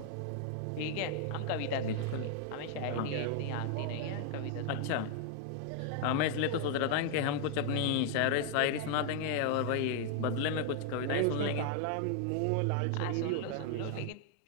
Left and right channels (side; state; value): both; different; correlation 0.00